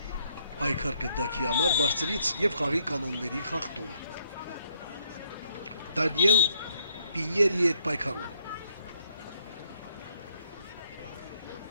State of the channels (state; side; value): inverted; both; correlation -0.71